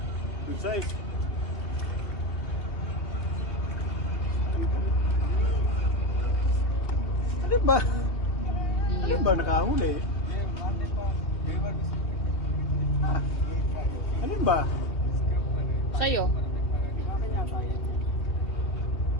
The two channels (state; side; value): late; right; 2.7 ms